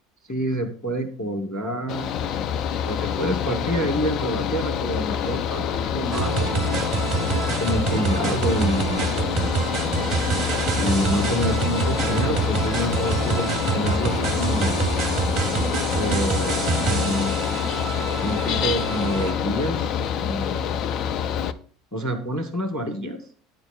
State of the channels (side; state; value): both; normal; correlation 0.46